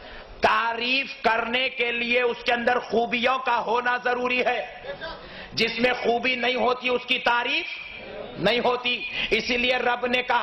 تعریف کرنے کے لیے اس کے اندر خوبیوں کا ہونا ضروری ہے۔ جس میں خوبی نہیں ہوتی اس کی تعریف نہیں ہوتی۔ اسی لیے رب نے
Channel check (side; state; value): both; identical; correlation 1.00